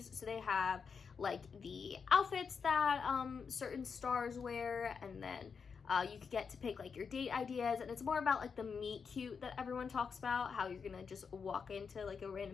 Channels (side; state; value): right; quieter; 5.9 dB